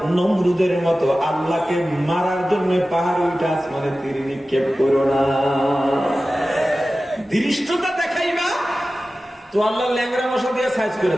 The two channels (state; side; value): normal; both; correlation 0.95